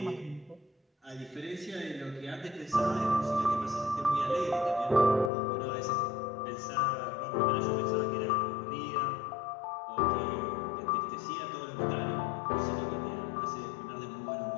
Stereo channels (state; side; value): drops out; right; at 5.3 s